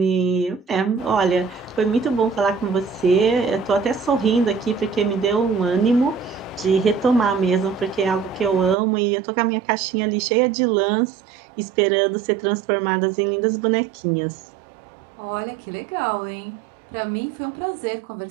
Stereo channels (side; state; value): left; drops out; at 8.8 s